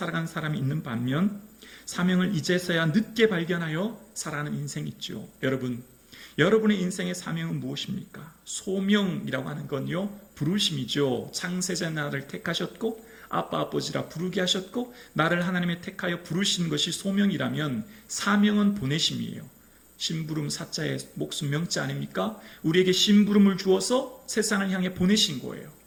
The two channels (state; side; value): identical; both; correlation 1.00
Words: 사람이 있는 반면, 사명을 이제서야 늦게 발견하여 살아가는 인생이 있죠. 여러분의 인생의 사명은 무엇입니까? 소명이라고 하는 건요, 부르심이죠. 창세자 나를 택하셨고 아빠 아버지라 부르게 하셨고 나를 하나님의 택하여 부르신 것이 소명이라면, 사명은 보내심이에요. 심부름 사자의 목숨 명자 아닙니까? 우리에게 심부름을 주어서 세상을 향해 보내신 거예요.